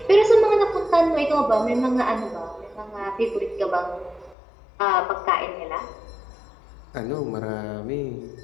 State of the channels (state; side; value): drops out; right; at 4.4 s